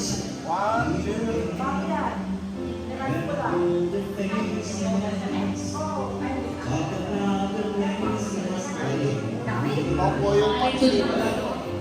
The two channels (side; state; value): both; identical; correlation 1.00